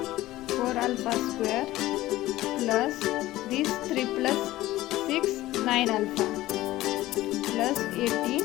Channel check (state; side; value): quieter; right; 16.4 dB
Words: 4 alpha square plus this 3 plus 6, 9 alpha plus 18,